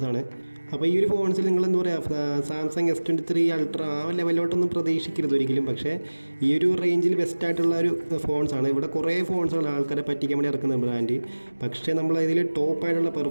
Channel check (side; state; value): both; inverted; correlation -1.00